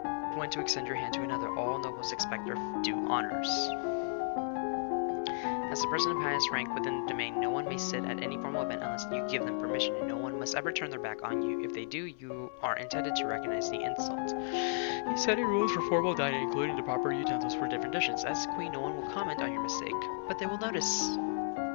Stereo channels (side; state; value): right; silent; 55 dB below the other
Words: when to extend your hand to another. All nobles expect their due honors. As the person of highest rank within the domain, no one may sit at any formal event unless you give them permission, and no one must ever turn their back on you. If they do, you are intended to recognize the insult. You set rules for formal dining, including the proper utensils for different dishes. As queen, no one will comment on your mistake, but they will notice.